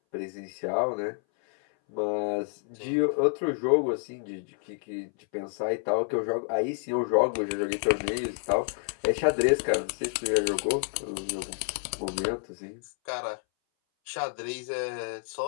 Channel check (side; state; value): right; silent; 58 dB below the other